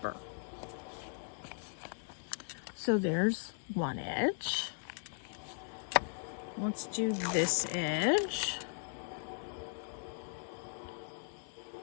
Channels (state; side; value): silent; right; digital silence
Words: So there's one edge. Let's do this edge.